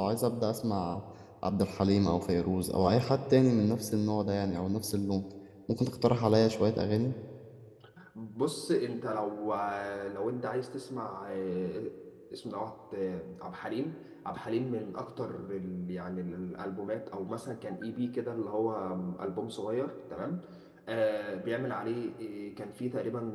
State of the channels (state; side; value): identical; both; correlation 1.00